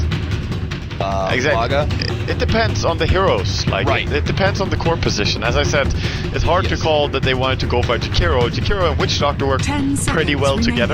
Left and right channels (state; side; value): identical; both; correlation 1.00